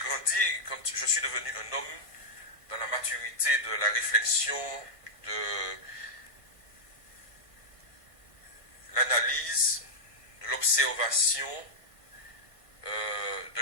quand je suis devenu un homme dans la maturité de la réflexion, de l'analyse, de l'observation, de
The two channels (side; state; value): right; late; 1.5 ms